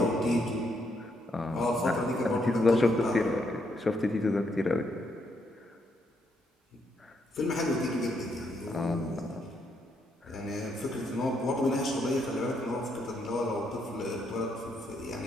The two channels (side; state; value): both; normal; correlation 0.76